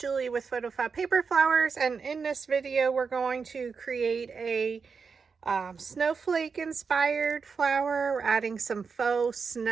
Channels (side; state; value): left; quieter; 5.4 dB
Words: with PhotoFabPaperFlowers, and in this video we're going to create a snowflake inspired flower. We're adding some faux